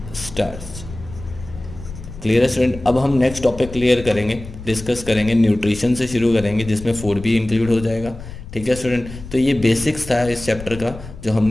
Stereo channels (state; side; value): noise; left; rumble, 13 dB below the sound